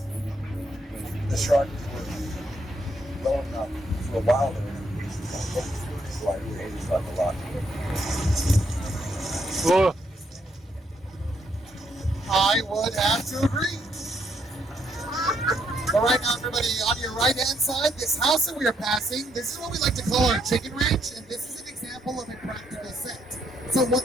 waited. The shark was low enough for a while there. So I really hated it a lot. Oh, I would have to agree. But right now, everybody, on your right-hand side, this house that we are passing, this is what we like to call our chicken ranch, and this is an example of a practical set. So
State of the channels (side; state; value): both; normal; correlation 0.74